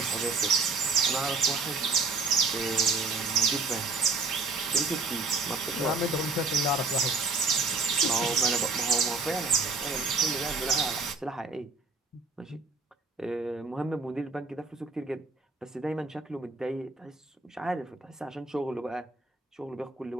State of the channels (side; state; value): left; quieter; 3.8 dB